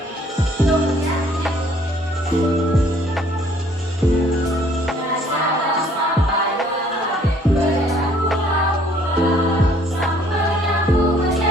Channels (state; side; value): normal; both; correlation 0.60